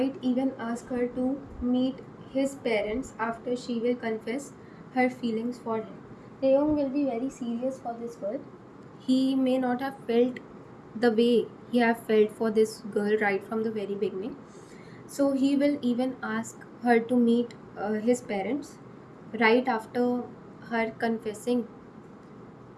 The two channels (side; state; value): both; identical; correlation 1.00